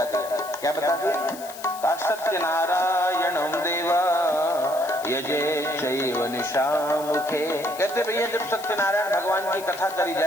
दिए। क्या बता दिए? सत्यनारायणं देवा यजे चैव निशामुखे। कहते भैया जब सत्यनारायण भगवान की कथा करी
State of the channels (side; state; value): left; noise; hiss, 15 dB below the sound